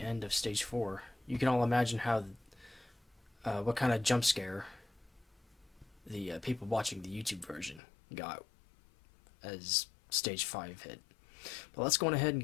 end of stage 4. You can all imagine how, what kind of jump scare the people watching the YouTube version got as stage 5 hit. But let's go on ahead and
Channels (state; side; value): drops out; right; at 7.8 s